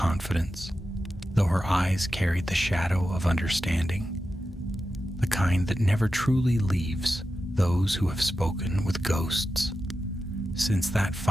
though her eyes carried the shadow of understanding, the kind that never truly leaves those who have spoken with ghosts. Since that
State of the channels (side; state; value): both; normal; correlation 0.91